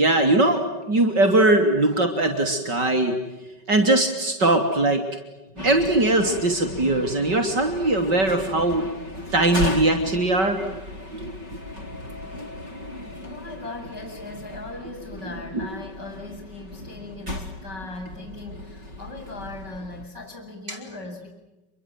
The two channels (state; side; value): late; left; 5.3 ms